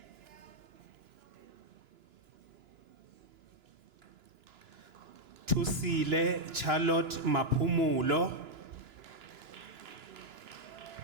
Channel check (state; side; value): late; left; 2.9 ms